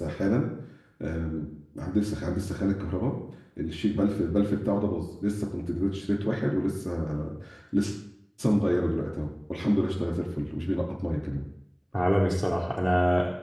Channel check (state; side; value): identical; both; correlation 1.00